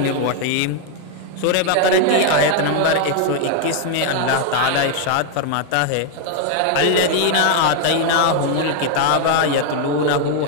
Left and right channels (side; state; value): both; different; correlation 0.00